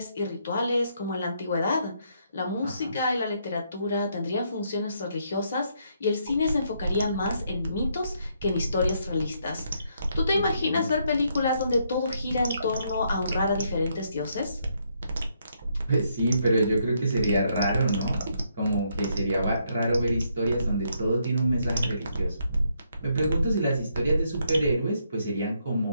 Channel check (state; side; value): inverted; both; correlation -0.74